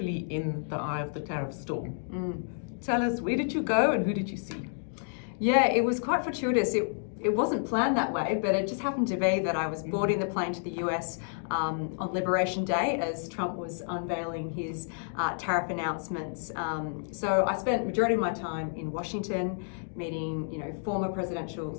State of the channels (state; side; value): silent; right; digital silence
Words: in the eye of the tariff storm. Tell us, where did you go and who did you see? Yeah, it was quite fortuitous. It wasn't planned that way, but it just happened to be that I was boarding the plane to the US on Liberation Day as Trump was unveiling his tariff announcements. So I spent majority of my time in Washington meeting, former presidential